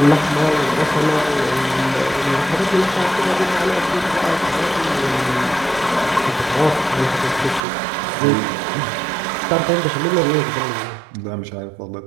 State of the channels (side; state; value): left; drops out; at 7.6 s